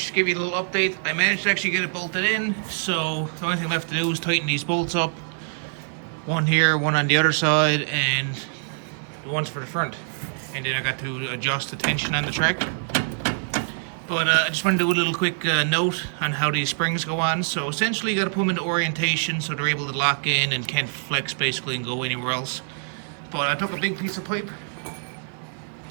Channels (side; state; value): left; silent; 55 dB below the other